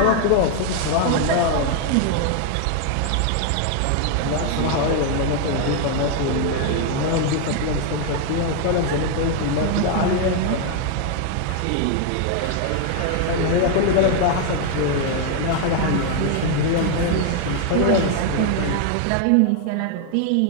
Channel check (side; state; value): both; different; correlation 0.00